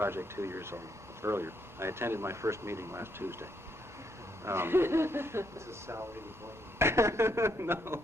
2 years earlier. I attended my first meeting last Tuesday. This is salary employment. No.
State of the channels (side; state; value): both; normal; correlation 0.75